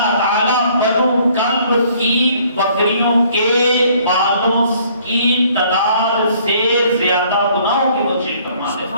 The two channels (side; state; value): both; inverted; correlation -0.60